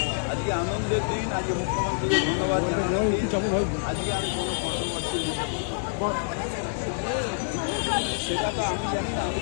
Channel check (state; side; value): silent; right; 60 dB below the other